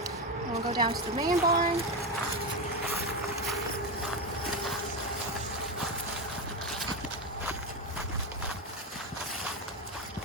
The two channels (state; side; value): normal; both; correlation 0.14